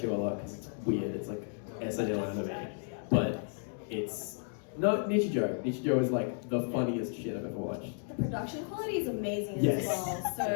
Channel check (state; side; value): silent; right; 56 dB below the other